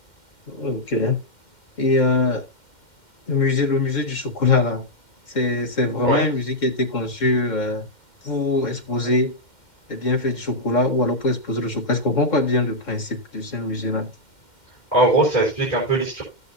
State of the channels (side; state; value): right; late; 2.1 ms